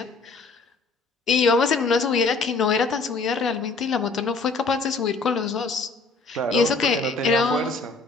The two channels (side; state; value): right; quieter; 3.9 dB